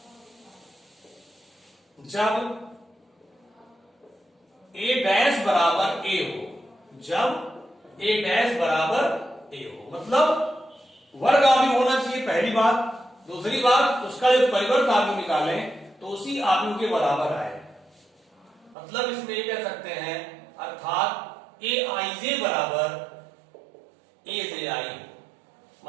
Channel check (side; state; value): left; drops out; at 18.8 s